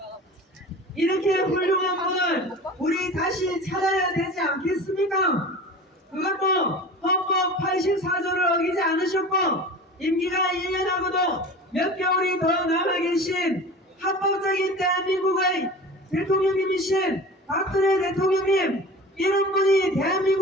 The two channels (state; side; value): normal; both; correlation 0.36